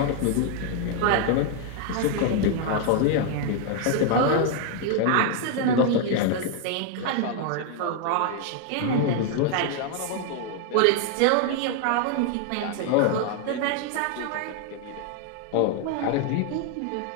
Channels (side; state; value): both; different; correlation 0.00